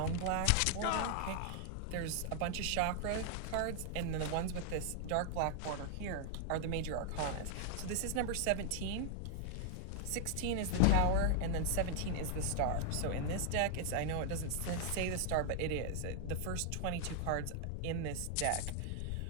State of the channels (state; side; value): different; both; correlation 0.00